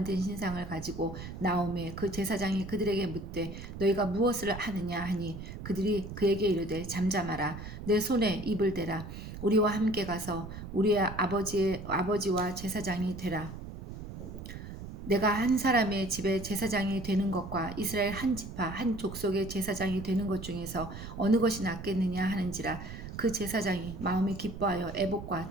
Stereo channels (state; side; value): noise; right; rumble, 10 dB below the sound